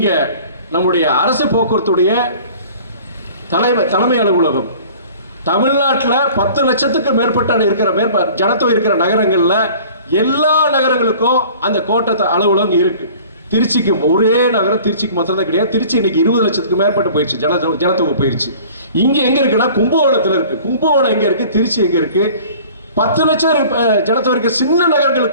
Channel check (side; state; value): both; inverted; correlation -0.47